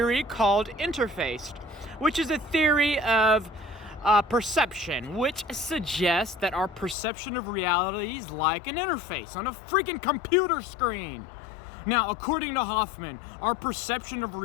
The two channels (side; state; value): right; drops out; at 7.0 s